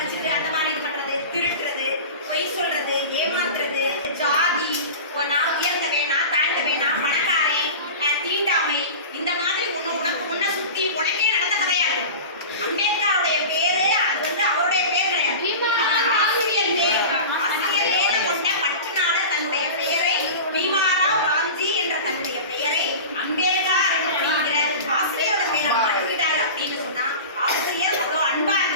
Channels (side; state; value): both; inverted; correlation -0.32